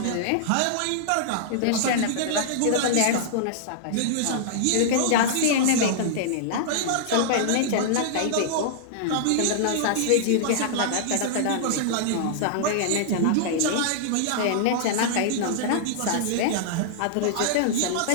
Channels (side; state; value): both; different; correlation -0.01